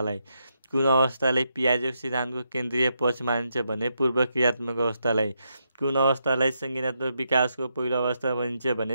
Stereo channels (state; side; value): inverted; both; correlation -0.82